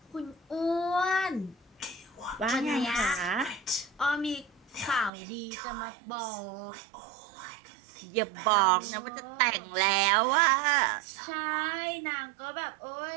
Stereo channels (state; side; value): drops out; left; at 5.1 s